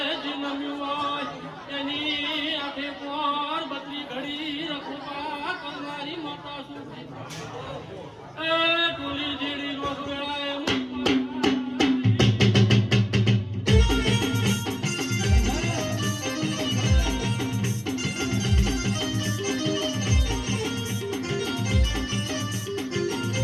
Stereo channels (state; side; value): identical; both; correlation 1.00